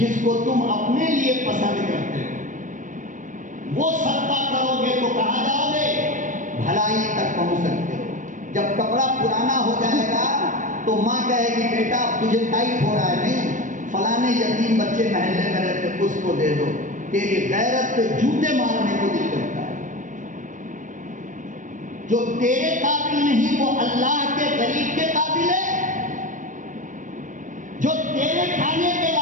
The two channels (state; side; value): late; left; 0.37 ms